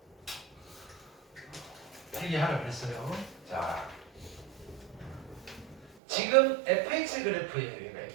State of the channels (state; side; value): drops out; left; at 6.0 s